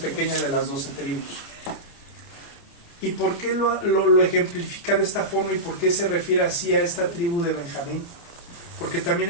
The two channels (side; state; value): right; late; 29 ms